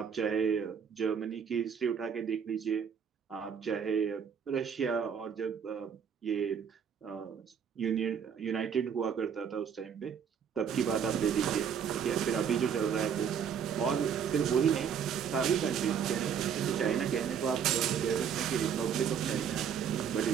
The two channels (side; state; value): left; quieter; 7.5 dB